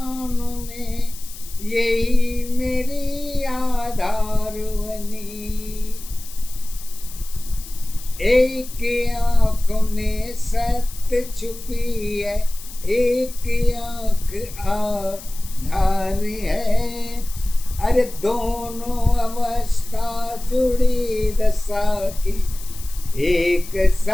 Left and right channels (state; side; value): noise; left; hiss, 15 dB below the sound